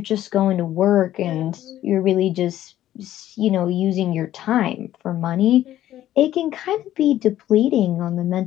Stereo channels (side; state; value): right; quieter; 13.0 dB